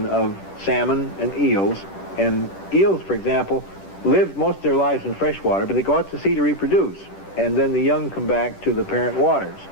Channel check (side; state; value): right; late; 10 ms